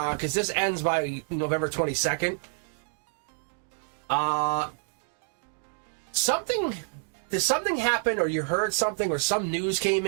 this ends by November 22nd. Did something happen, or you heard something, or some news came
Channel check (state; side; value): silent; left; 55 dB below the other